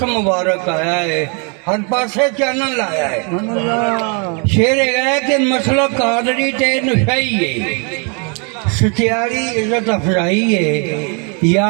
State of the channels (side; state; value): left; quieter; 36.6 dB